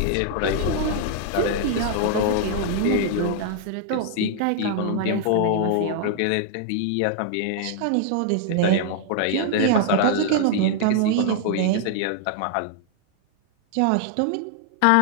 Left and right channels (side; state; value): both; different; correlation 0.00